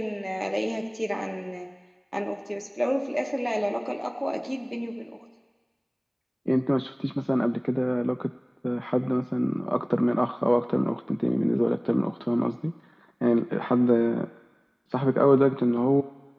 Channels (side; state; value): both; identical; correlation 1.00